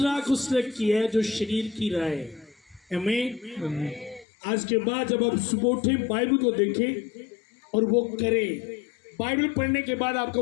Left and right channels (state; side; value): drops out; right; at 4.2 s